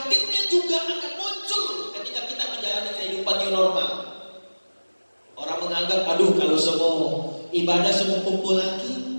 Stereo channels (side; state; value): both; inverted; correlation -1.00